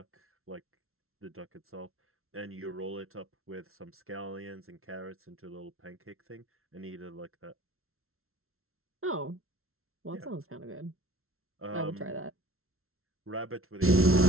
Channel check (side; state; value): left; late; 0.62 ms